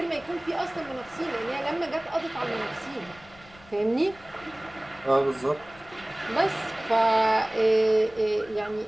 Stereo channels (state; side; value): noise; left; rumble, 23 dB below the sound